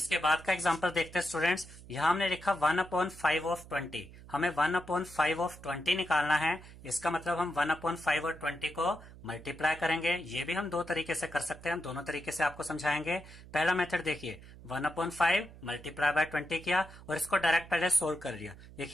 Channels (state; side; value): noise; right; hum, 18 dB below the sound